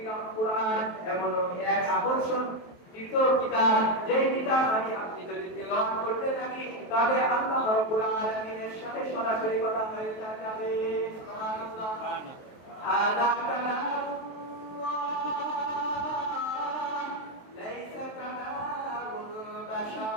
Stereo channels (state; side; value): late; right; 23 ms